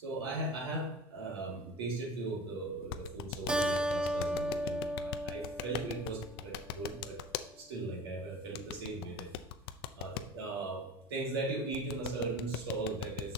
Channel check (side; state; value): both; normal; correlation 0.37